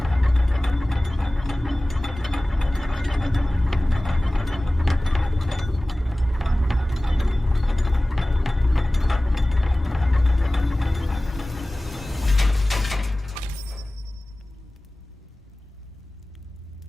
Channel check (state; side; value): normal; both; correlation 0.98